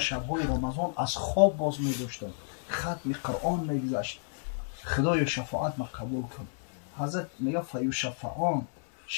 رمضان از خواب باز میداشتم، ختم قرآن میگذشت، خدای شفاعت ما قبول کن. حضرت میگه فیشفعان،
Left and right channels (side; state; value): right; silent; digital silence